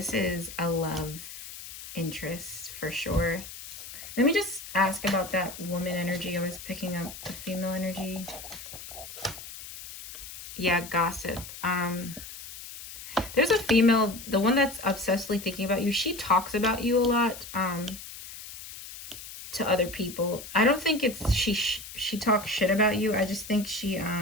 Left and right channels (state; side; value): noise; left; hiss, 13 dB below the sound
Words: is a love interest for sure. Let me just ask about that woman energy. I was picking up the female energy. Yeah, gossip. There's a female, the one that's obsessively thinking about you. She talks about you a lot to other people. I don't think it's she talks shit about you. I just think she